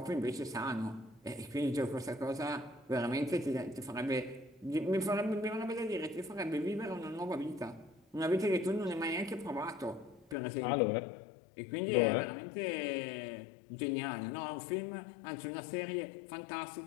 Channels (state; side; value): drops out; right; at 10.4 s